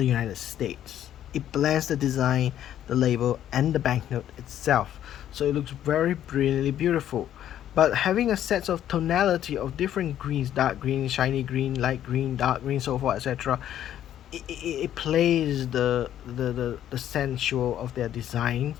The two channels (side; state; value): right; quieter; 11.1 dB